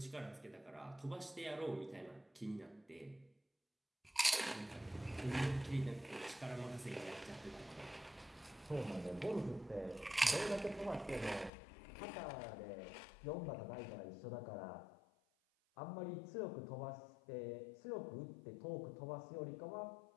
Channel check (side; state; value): right; drops out; at 11.5 s